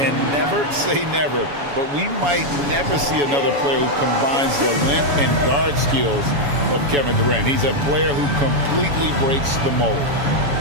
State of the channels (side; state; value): left; late; 7.1 ms